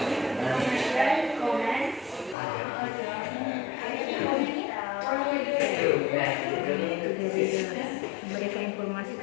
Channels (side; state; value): right; drops out; at 2.4 s